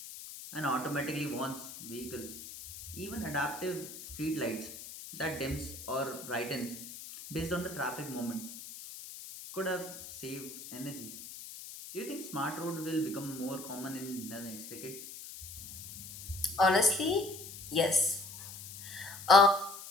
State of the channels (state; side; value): noise; left; hiss, 12 dB below the sound